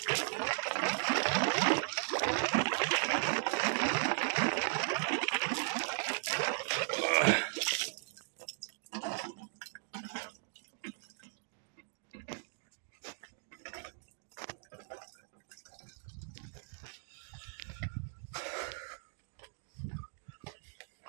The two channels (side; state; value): left; silent; 53 dB below the other